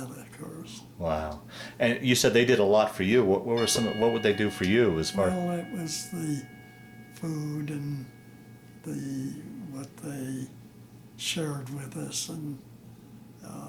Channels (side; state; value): both; identical; correlation 1.00